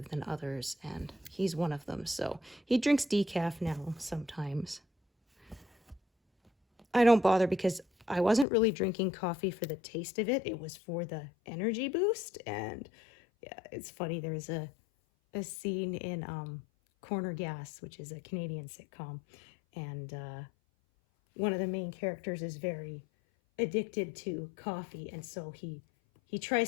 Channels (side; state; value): right; drops out; at 8.5 s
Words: than others, and he's one of them. So he drinks decaf now sometimes. I don't bother because I wasn't really drinking coffee for the taste of it. It was for the energy boost. And yeah, it's funny. There's a scene in Corner Gas, which is a Canadian sitcom. And one of the main characters is very addicted to coffee. And so he